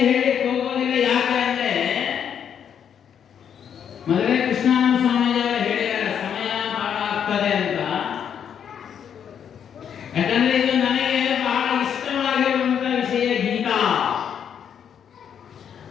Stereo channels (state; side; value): quieter; right; 8.3 dB